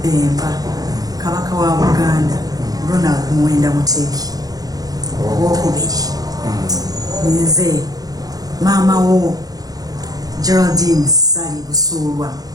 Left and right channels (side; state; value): left; late; 0.18 ms